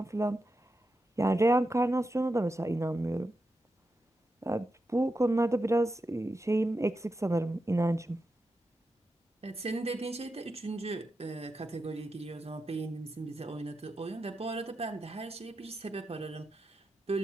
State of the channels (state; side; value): normal; both; correlation 0.88